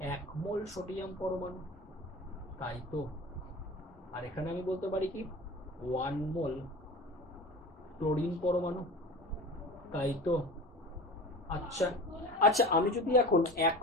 1 মোল সোডিয়াম পরমাণু, তাই তো? আর এখানে আমি বলতে পারি কি 1 মোল ক্লোরিন পরমাণু, তাই তো? আচ্ছা আচ্ছা, আমি যদি এখন 1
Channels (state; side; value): normal; both; correlation 0.35